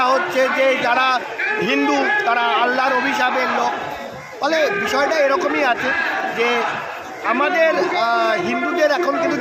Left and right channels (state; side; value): identical; both; correlation 1.00